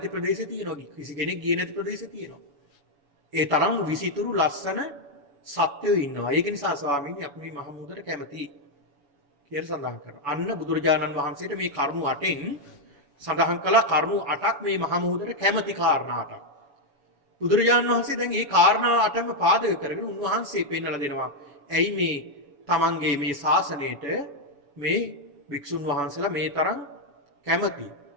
ප්‍රදේශ තියෙනවා. කිසි කෙනෙක් ගියේ නැති ප්‍රදේශ තියෙනවා. ඒ තරම් විසිතුරු ලස්සන සත්‍යෝ ඉන්නවා. ඒක නිසා ස්වාමීනි අපි මේ මහමුහුදට කැමති කියලා සඳහන් කරනවා. අන්න බුදුරජාණන් වහන්සේට මේ කරුණු 8න් සඳහන් කළ කරුණු 8ක් මේ මහමුහුදට කැමති කාරණා 8ක්. බුදුරජාණන් වහන්සේ දැන් මේ කාරණා 8ම පාදක කරගෙන උන්වහන්සේ පෙන්වලා දෙනවා. ඇයි මේ තමන්ගේ මේ ශාසනයට මේ වික්ෂුන් වහන්සේලා මේ තරම් කැමති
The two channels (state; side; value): late; left; 7.0 ms